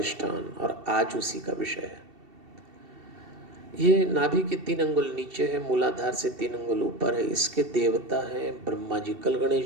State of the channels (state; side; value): late; left; 2.7 ms